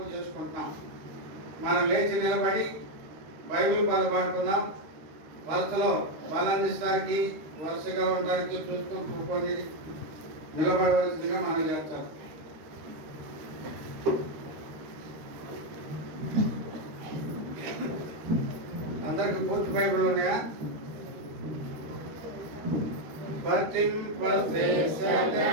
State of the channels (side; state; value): left; late; 13 ms